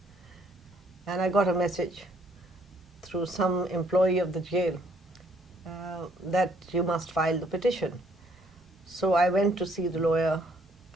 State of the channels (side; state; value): both; normal; correlation 0.66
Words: and I got a message through some employee of the jail that you must file the petition. So I went to see the lawyer,